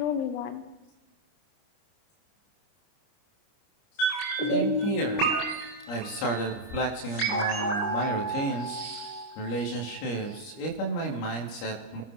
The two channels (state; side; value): late; right; 29 ms